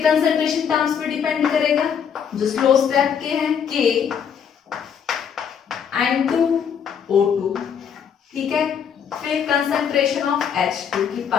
कंसंट्रेशन टर्म्स पे डिपेंड करेगा जो स्लो स्टेप के हैं, K N2O2। ठीक है, फिर कंसंट्रेशन ऑफ H2 की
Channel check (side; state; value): right; quieter; 7.6 dB